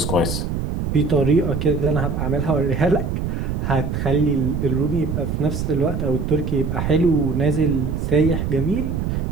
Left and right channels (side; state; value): right; noise; rumble, 2 dB below the sound